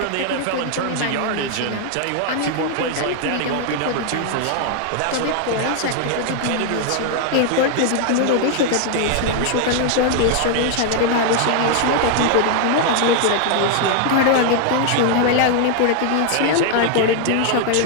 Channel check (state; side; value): different; both; correlation 0.00